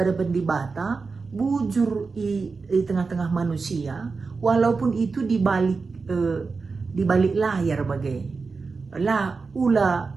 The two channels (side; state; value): left; quieter; 4.5 dB